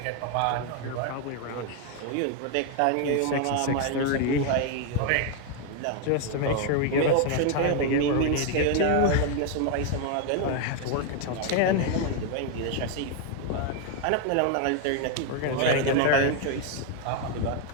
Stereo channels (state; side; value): different; both; correlation 0.01